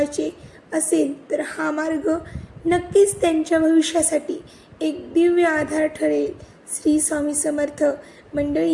असेल तर हा मार्ग नक्कीच त्यांच्या भविष्यासाठी एक दिव्य आधार ठरेल. श्री स्वामी समर्थ.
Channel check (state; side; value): identical; both; correlation 1.00